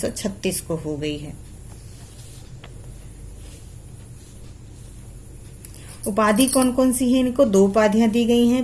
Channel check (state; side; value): identical; both; correlation 1.00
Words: को हो गई है। उपाधि कौन कौन सी है इनको? 2 उपाधियां दी गई